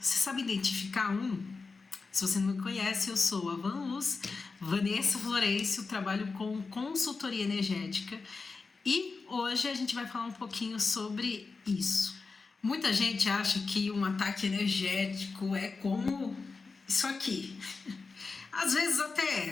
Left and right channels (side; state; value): right; quieter; 4.3 dB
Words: sabe identificar um? Se você não me conhece, eu sou a Vanessa Florencio, trabalho com consultoria energética e hoje a gente vai falar um pouquinho sobre isso. Muita gente acha que um ataque energético é como isso aqui. Às vezes